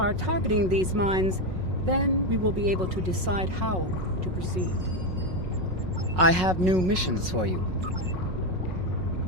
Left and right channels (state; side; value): late; left; 5.5 ms